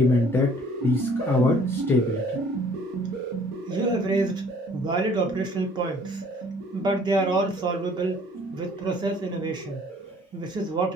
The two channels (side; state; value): both; normal; correlation 0.56